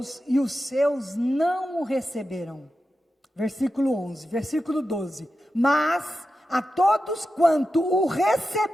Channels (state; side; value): normal; both; correlation 0.91